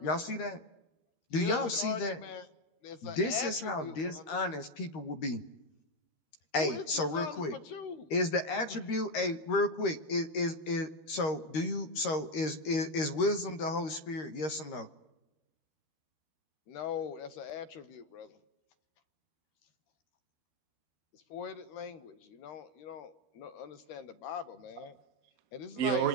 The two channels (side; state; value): right; late; 13 ms